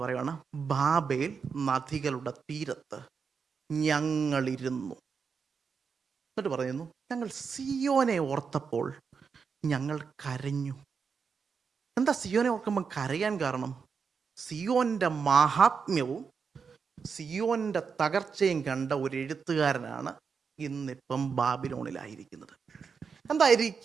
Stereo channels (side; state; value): left; quieter; 5.8 dB